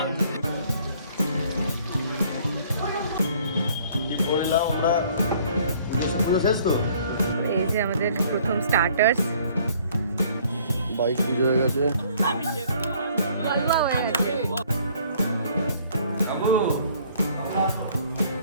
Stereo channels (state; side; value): inverted; both; correlation -0.58